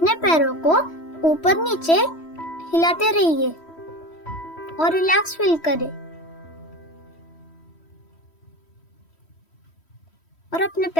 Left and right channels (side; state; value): right; late; 3.1 ms